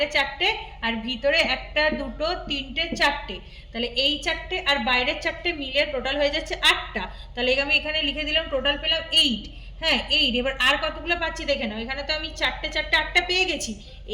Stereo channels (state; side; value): identical; both; correlation 1.00